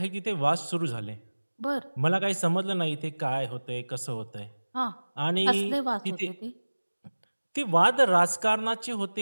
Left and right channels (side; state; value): both; inverted; correlation -1.00